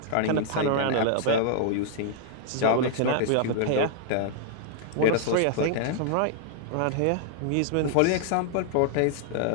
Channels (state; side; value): different; both; correlation 0.00